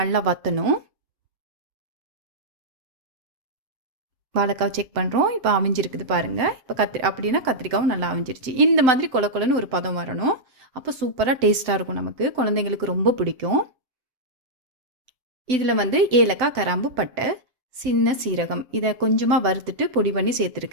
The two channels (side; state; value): left; late; 7.8 ms